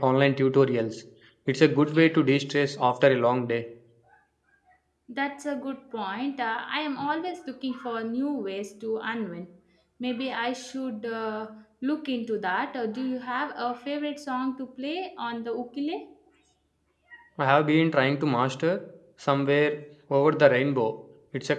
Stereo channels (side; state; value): both; identical; correlation 1.00